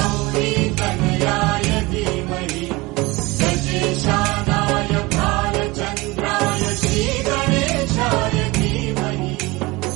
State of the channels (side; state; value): left; quieter; 22.7 dB